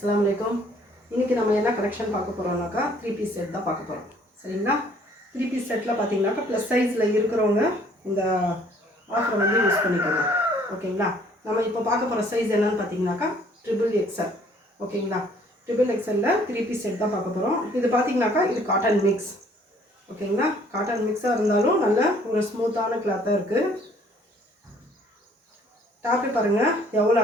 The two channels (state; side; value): normal; both; correlation 0.59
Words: alaikum. இன்னைக்கு நம்ம என்ன கலெக்ஷன் பார்க்க போறோம்னாக்கா 3 பீஸ் செட் தான் பார்க்க போறோம். சரிங்களா? 3 பீஸ் செட்ல பாத்தீங்கன்னாக்கா ப்ளஸ் சைஸ்ல இருக்கிறவங்க இந்த ஆஃபர் வந்து யூஸ் பண்ணிக்கலாம். ஓகேங்களா? நம்ம இப்போ பார்க்க போற சைஸ் என்னன்னு பாத்தீங்கன்னாக்கா XXL. ஓகேங்களா? XXLல 3 பீஸ் செட் தான் பார்க்க போறோம். இது பாத்தீங்கன்னாக்கா இது காட்டன் மிக்ஸ். ஓகேங்களா? காட்டன் மிக்ஸா இருந்தாலும் நல்ல ஒரு ஸ்மூத்தான கிளாத்தா இருக்கு. டாப் பாருங்க எவ்வளவு